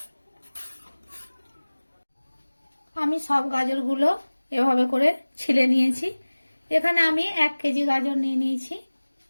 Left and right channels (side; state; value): both; inverted; correlation -1.00